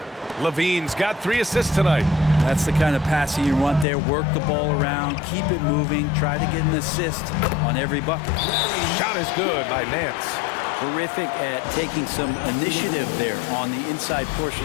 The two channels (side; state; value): right; drops out; at 3.9 s